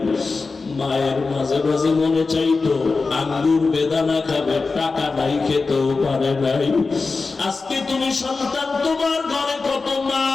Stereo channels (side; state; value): right; quieter; 4.1 dB